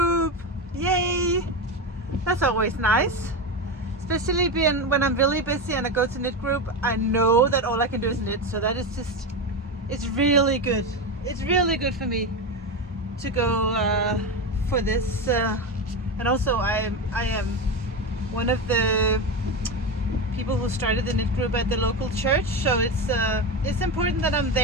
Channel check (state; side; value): normal; both; correlation 0.17